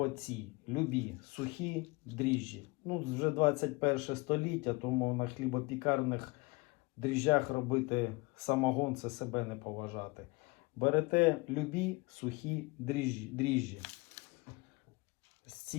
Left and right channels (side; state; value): right; quieter; 25.2 dB